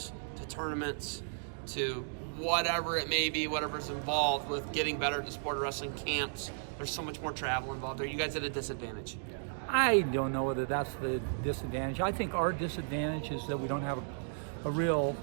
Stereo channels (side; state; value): left; silent; digital silence